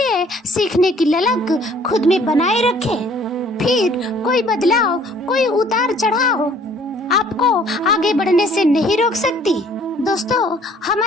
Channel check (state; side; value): normal; both; correlation 0.57